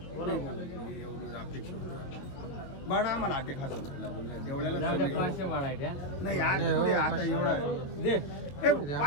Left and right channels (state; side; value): late; right; 22 ms